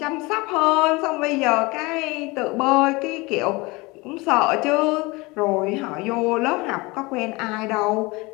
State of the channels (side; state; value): right; quieter; 24.2 dB